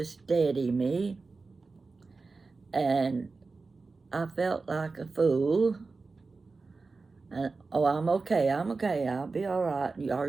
steady me, and I felt like a fool. And, "Oh, I'm okay, I'll be all right. Are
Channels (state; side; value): quieter; left; 4.0 dB